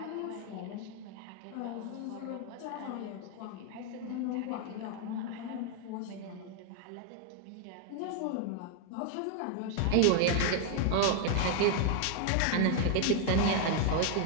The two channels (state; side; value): different; both; correlation 0.00